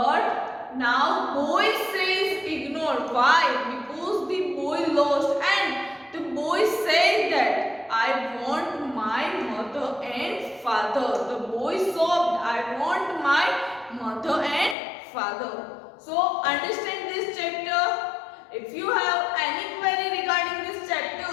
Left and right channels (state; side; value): drops out; right; at 14.8 s